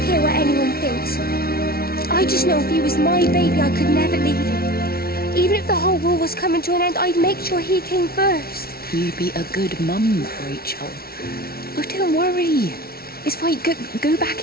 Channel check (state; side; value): late; right; 0.44 ms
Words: care what anyone thinks. I just know if he was my baby, I could never leave him. Even if the whole world was coming to an end, I'd make sure he came first. You'd be a good mum, Rachel. Oh, don't worry. It's fine. Go